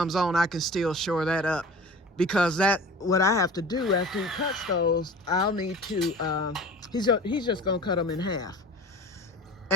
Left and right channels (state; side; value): normal; both; correlation 0.39